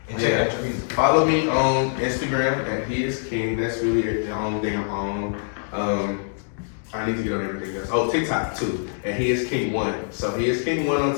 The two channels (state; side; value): silent; right; digital silence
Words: And check out your music. Follow me on Instagram at He Is King. That's really the only thing I'm on. I need to get on everything else. Oh, TikTok too. And He Is King 1. So He Is King 1 on